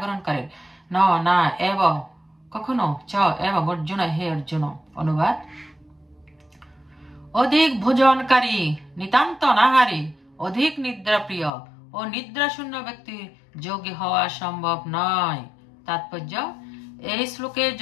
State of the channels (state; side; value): drops out; right; at 11.5 s